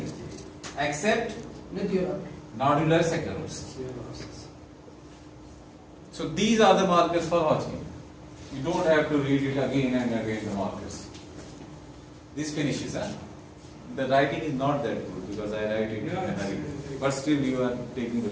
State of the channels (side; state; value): both; identical; correlation 1.00